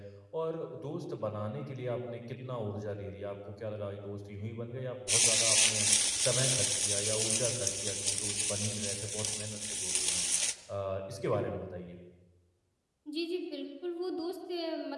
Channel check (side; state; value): both; identical; correlation 1.00